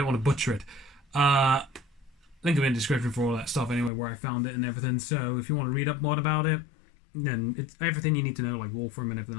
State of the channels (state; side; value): drops out; right; at 3.9 s